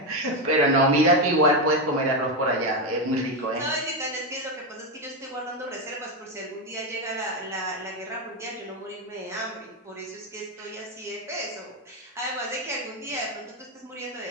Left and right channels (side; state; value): both; normal; correlation 0.09